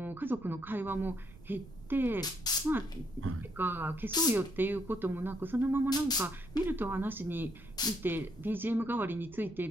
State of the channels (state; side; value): noise; right; rumble, 18 dB below the sound